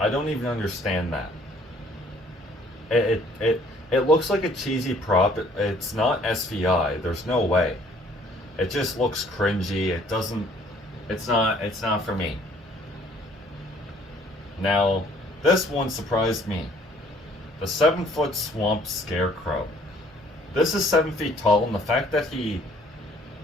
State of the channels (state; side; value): normal; both; correlation 0.59